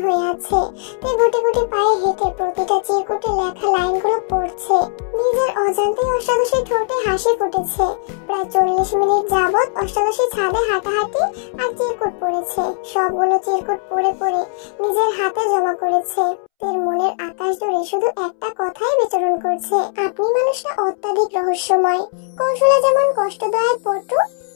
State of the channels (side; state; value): right; silent; 67 dB below the other